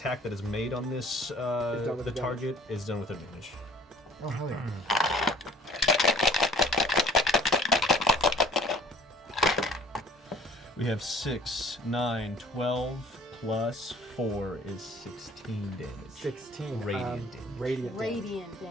that is made on this done with the advantage. target is done with advantage. Oh, hell yeah. We have 6, 9, 12 plus 4 is 16 damage. 16. Radiant damage. Radiant. Radiant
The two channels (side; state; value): both; normal; correlation 0.52